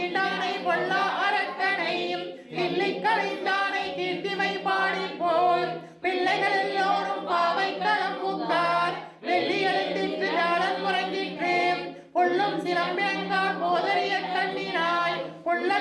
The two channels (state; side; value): identical; both; correlation 1.00